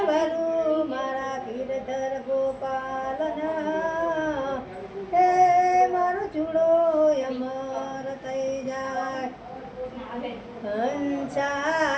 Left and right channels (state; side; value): identical; both; correlation 1.00